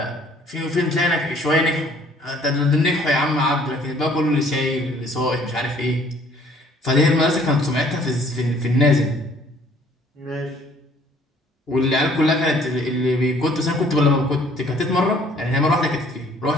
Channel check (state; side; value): normal; both; correlation 0.58